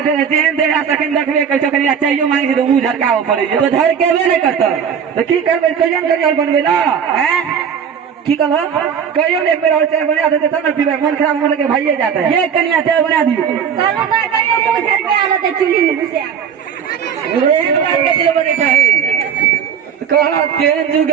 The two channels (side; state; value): left; quieter; 7.6 dB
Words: जेहन देरा तखन देखबे कर चकरिया चाहिए मांगी तो मुंह झरकाव पड़े तो झरकेबे नहीं करता तो की करबे कजन करियल बनबे ना हैं की कहल कहियो ने एक बेर और चाय बना देते तब न पीबे मन खराब मन के भाईए जाता है ये कन्या चाय बना दियो कहलो ना कहियो मुँह झरकाला त चुली में घुसे कहा केहन जुग